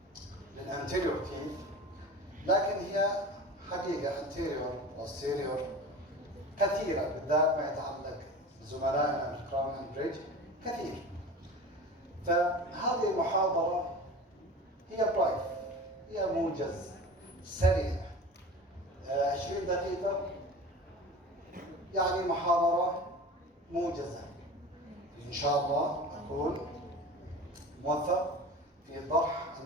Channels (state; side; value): normal; both; correlation 0.35